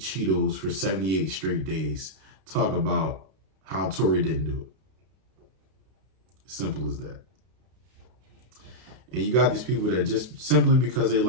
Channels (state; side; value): late; left; 32 ms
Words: for 78 straight days. Talk about how Tory didn't do it. Simple as that. And you got these people that just simply because they